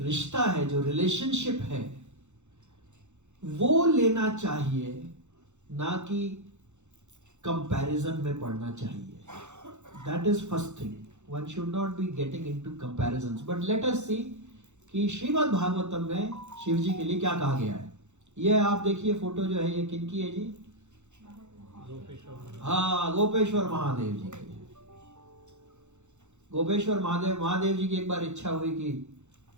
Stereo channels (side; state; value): left; late; 0.83 ms